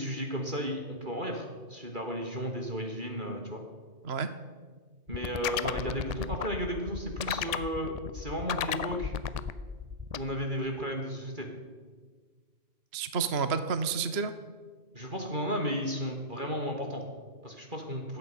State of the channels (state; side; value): late; left; 2.9 ms